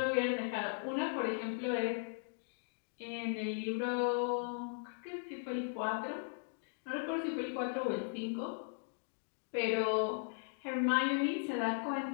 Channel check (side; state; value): right; silent; digital silence